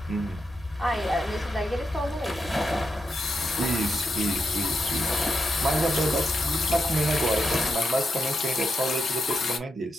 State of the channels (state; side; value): normal; both; correlation 0.84